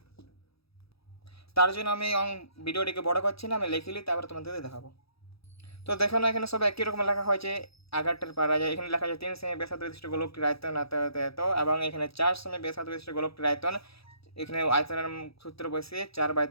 তার জন্য আমি ভিডিওটিকে বড় করছি না, আমি লিখিলি তারপরে তোমাদের দেখাবো। তো দেখো না এখানে সব একই রকম লেখা হয়েছে, আগেরটার পারা যায়। এখানে লেখা আছে 3 সেমি ব্যাসার্ধ বিশিষ্ট গোলকটির আয়তন এত, এবং এখানে 4 সেমি ব্যাসার্ধ বিশিষ্ট গোলকটির আয়তন, এখানে আয়তনের সূত্র বসিয়ে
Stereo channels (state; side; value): late; right; 0.77 ms